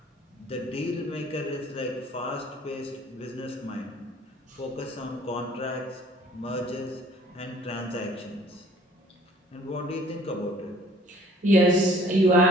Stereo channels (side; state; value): both; normal; correlation 0.55